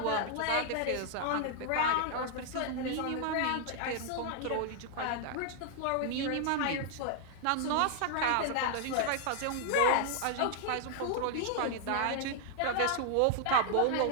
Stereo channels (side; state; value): both; different; correlation 0.00